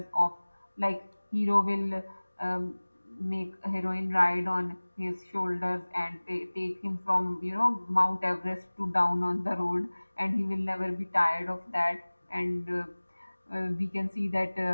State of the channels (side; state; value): both; inverted; correlation -1.00